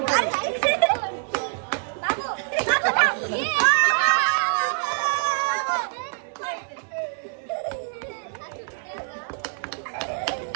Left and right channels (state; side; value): silent; left; digital silence